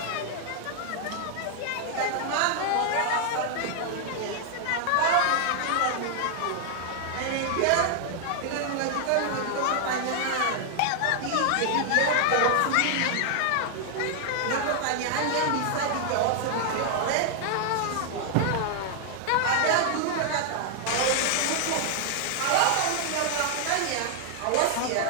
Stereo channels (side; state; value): both; different; correlation 0.00